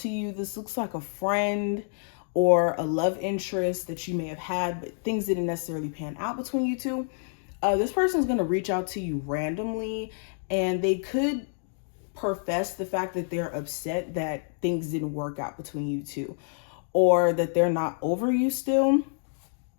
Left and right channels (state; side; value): silent; right; digital silence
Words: you. This looks like a friend or a love interest that you may have had, but things didn't necessarily pan out between you two. This person is going to reach out to you randomly, and they could profess the fact that they're upset that things didn't work out between you two, or that they're not over you still.